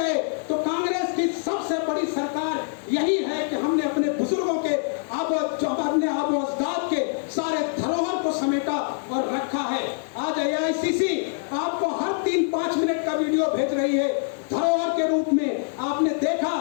तो कांग्रेस की सबसे बड़ी सरकार यही है कि हमने अपने बुजुर्गों के अपने आबो अजदाद के सारे धरोहर को समेटा और रखा है। आज AICC आपको हर 3-5 मिनट का वीडियो भेज रही है धरोहर के रूप में। आपने देखा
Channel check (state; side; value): silent; right; digital silence